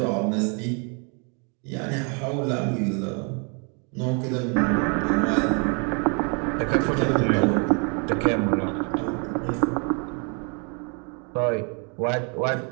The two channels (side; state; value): left; quieter; 36.4 dB